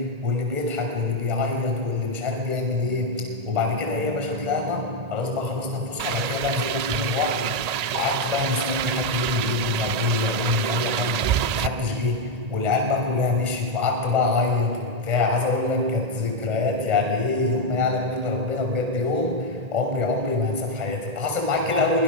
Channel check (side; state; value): left; late; 1.8 ms